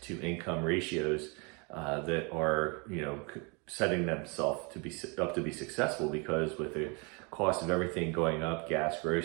to income ratios that are, setting themselves up to be successful, because with the cost of everything going up, gas,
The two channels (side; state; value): left; quieter; 32.0 dB